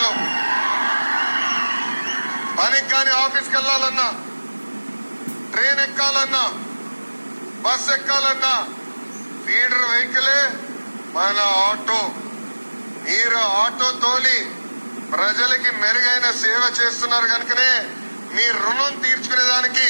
పనికి కానీ ఆఫీస్కి వెళ్లాలన్నా, ట్రైన్ ఎక్కాలన్నా, బస్ ఎక్కాలన్నా ఫీడర్ వెహికలే మన ఆటో. మీరు ఆటో తోలి ప్రజలకి మెరుగైన సేవ చేస్తున్నారు కనుకనే మీ రుణం తీర్చుకునేదానికి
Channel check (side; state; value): both; inverted; correlation -1.00